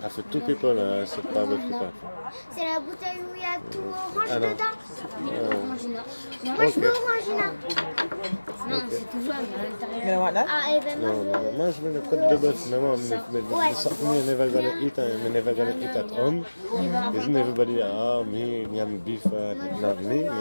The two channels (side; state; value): both; inverted; correlation -1.00